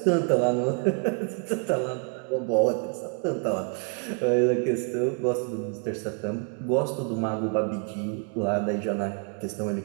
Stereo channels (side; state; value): left; quieter; 39.9 dB